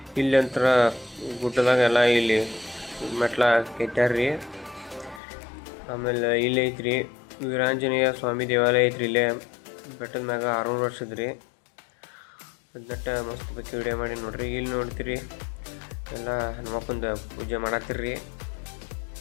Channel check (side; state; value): right; drops out; at 5.2 s